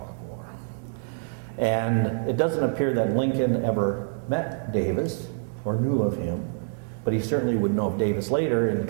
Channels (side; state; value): left; silent; digital silence